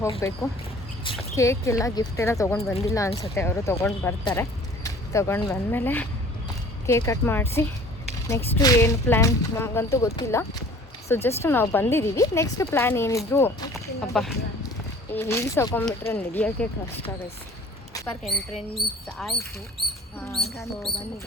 ಹೋಗಬೇಕು. ಕೇಕ್ ಎಲ್ಲ ಗಿಫ್ಟ್ ಎಲ್ಲ ತೊಗೊಂಡು ಬಂದಿಲ್ಲ ಅನಿಸುತ್ತೆ, ಅವರು ತೊಗೊಂಡು ಬರ್ತಾರೆ. ತೊಗೊಂಡು ಬಂದಮೇಲೆ ಕೇಕ್ ಕಟ್ ಮಾಡಿಸಿ ನೆಕ್ಸ್ಟು ಏನು ಪ್ಲ್ಯಾನ್ ನಮಗಂತೂ ಗೊತ್ತಿಲ್ಲ. ಸೊ ಜಸ್ಟ್ ನಾವು ಬಂದಿದ್ದೀವಿ. ನೆಕ್ಸ್ಟ್ ಪ್ಲ್ಯಾನ್ ಏನಿದ್ರು ಅಪ್ಪ ಈ ಹೀಲ್ಸ್ ಹಾಕೊಂಡ್ಬಿಟ್ರೆ ನಡೆಯೋಕ್ಕೆ ಕಷ್ಟ ಗೈಸ್. ಪಾರ್ಕ್ ಎಂಟ್ರೆನ್ಸ್ ಆಯಿತು.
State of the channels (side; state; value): both; normal; correlation 0.48